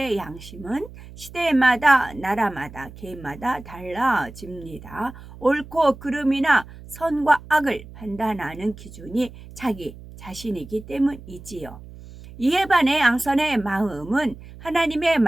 양심은 시대마다 나라마다 개인마다 달라집니다. 옳고 그름이나 선과 악을 판단하는 기준이 자기 자신이기 때문이지요. 이에 반해 양선의 마음은 하나님의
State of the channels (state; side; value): noise; right; hum, 17 dB below the sound